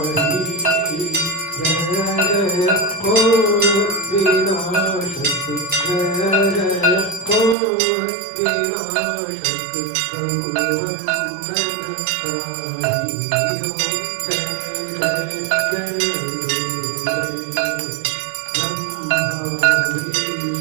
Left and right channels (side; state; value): left; drops out; at 7.6 s